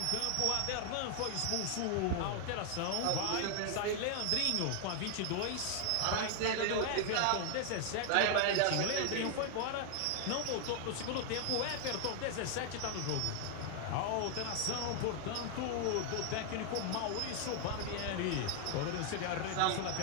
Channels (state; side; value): different; both; correlation 0.00